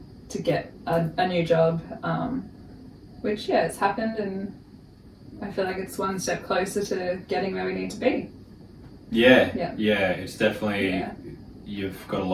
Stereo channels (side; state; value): both; identical; correlation 1.00